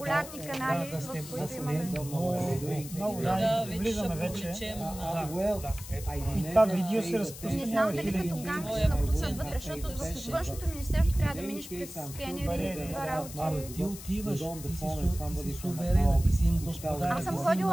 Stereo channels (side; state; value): left; noise; hiss, 13 dB below the sound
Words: канали, в които имаме. Много, влизаме вече. И това видео се разпространява. Не знам дали като ганг ще напусат вътре, защото в Външното министерство трябва да минеш през пионери това работа. Ти отиваш, ти си суверена, ти си им господар. Аз съм